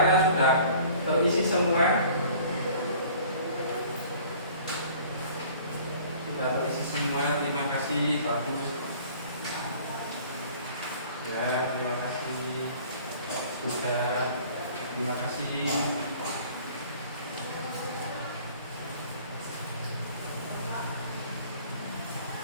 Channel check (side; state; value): both; inverted; correlation -0.50